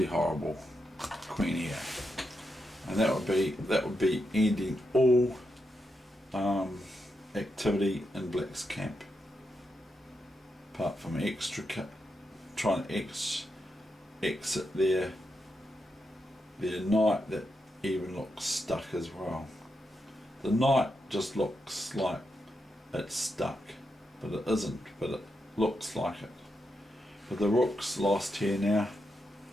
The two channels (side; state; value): both; normal; correlation 0.85